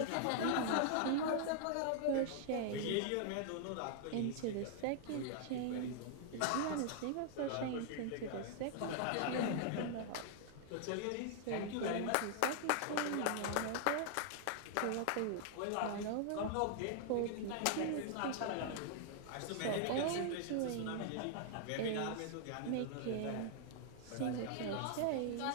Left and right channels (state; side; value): different; both; correlation 0.00